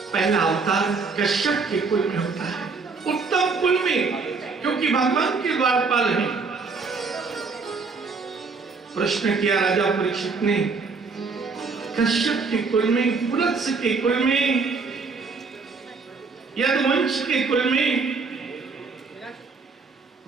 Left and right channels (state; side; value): quieter; left; 4.6 dB